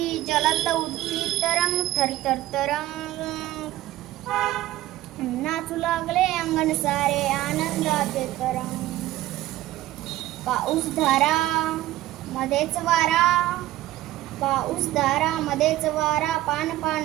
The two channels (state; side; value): quieter; left; 15.5 dB